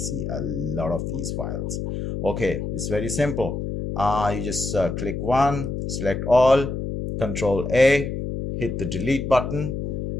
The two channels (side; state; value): left; noise; hum, 4 dB below the sound